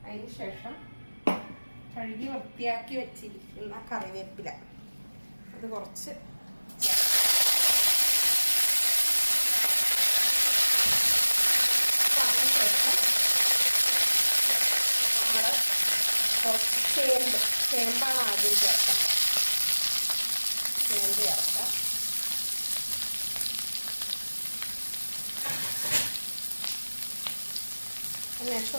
അതിന് ശേഷം കഴുകി വൃത്തിയാക്കി വെച്ചിരിക്കുന്ന കറിവേപ്പില അത് കുറച്ച് ചേർക്കാം. അതിന് ശേഷം നമ്മൾ കുറച്ച് ചേമ്പാണ് ആദ്യം ചേർക്കേണ്ടത്. ചേമ്പ് ചേർക്കാം. അതിനുശേഷം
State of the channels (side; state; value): both; inverted; correlation -1.00